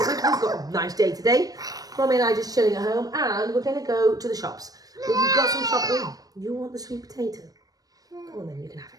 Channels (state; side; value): late; left; 0.18 ms